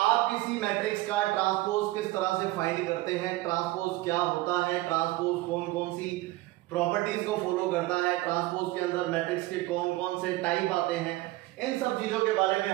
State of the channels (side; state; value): left; quieter; 18.9 dB